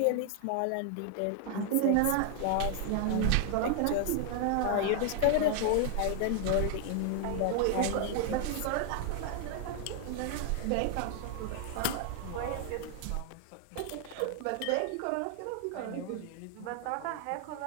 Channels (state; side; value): different; both; correlation 0.00